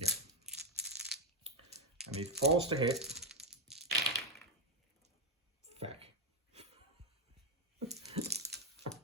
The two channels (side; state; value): both; normal; correlation 0.03